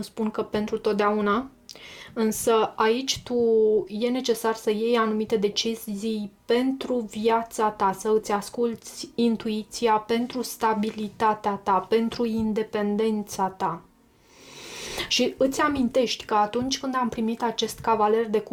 spun că pentru totdeauna, însă aici e necesar să iei anumite decizii pentru viața ta, să îți asculți intuiția pentru stabilitatea ta, pentru independența ta. Și îți amintești că atunci când am primit acest cavaler de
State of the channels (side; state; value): both; identical; correlation 1.00